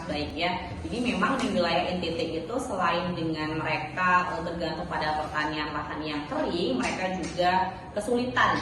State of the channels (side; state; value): both; identical; correlation 1.00